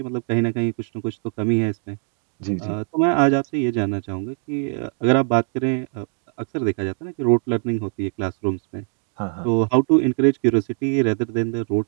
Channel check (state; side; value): silent; left; 56 dB below the other